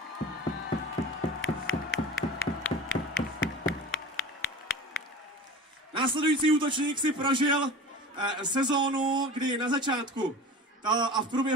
Následující útočník si prožil sezónu, kdy na začátku a v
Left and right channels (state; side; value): normal; both; correlation 0.36